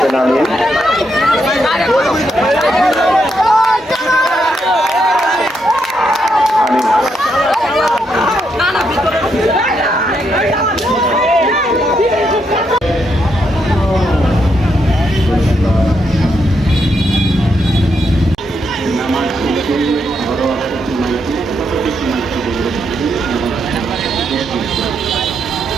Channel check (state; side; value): normal; both; correlation 0.79